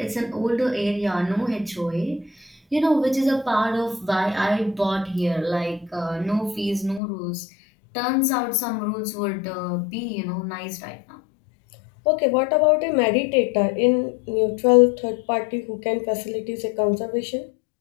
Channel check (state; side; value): drops out; right; at 7.0 s